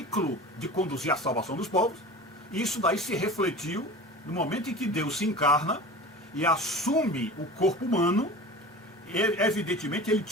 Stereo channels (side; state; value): both; normal; correlation 0.36